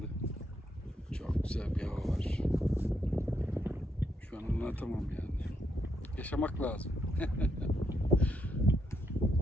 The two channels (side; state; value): both; normal; correlation 0.78